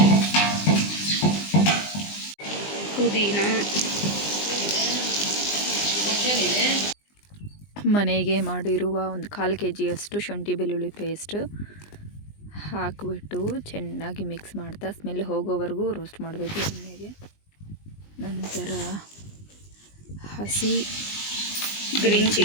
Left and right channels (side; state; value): right; late; 20 ms